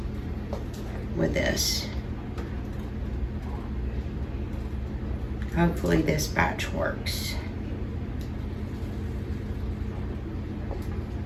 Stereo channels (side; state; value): both; identical; correlation 1.00